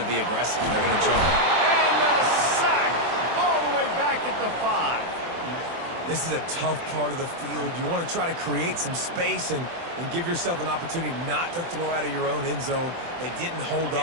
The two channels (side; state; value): left; late; 24 ms